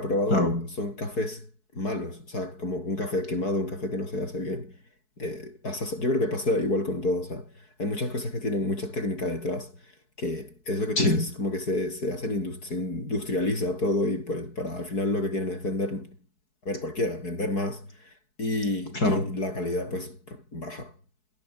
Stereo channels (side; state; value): right; late; 4.7 ms